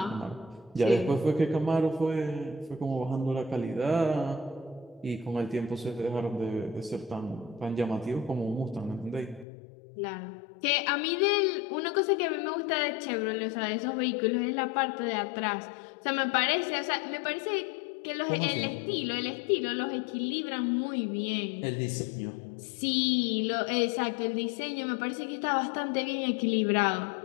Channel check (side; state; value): right; drops out; at 9.5 s